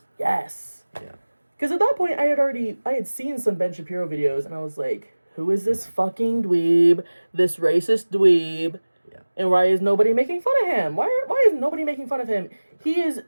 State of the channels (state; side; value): inverted; both; correlation -1.00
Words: Yes. Yeah. Because at that point, I had seen some Ben Shapiro videos, and I was like, who is this fucking dweeb? This racist dweeb? Yeah. And why is nobody making fun of him? Why is nobody making fun of him? He is